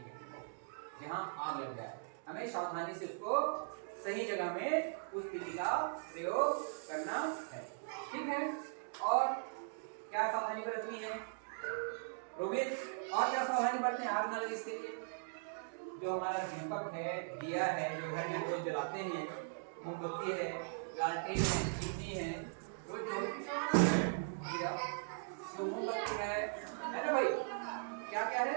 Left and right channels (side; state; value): left; silent; digital silence